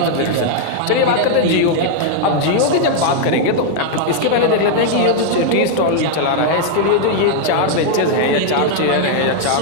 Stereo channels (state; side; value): different; both; correlation 0.00